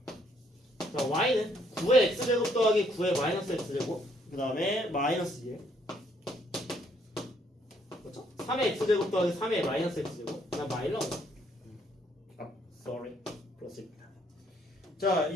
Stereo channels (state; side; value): normal; both; correlation 0.68